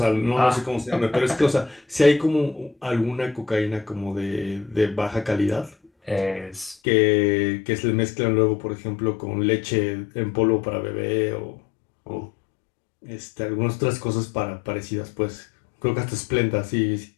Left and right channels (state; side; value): drops out; right; at 6.8 s